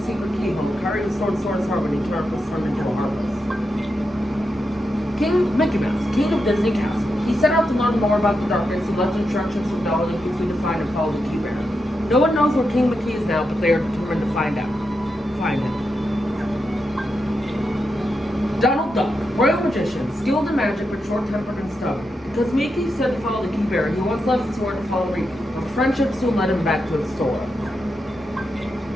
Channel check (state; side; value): normal; both; correlation 0.86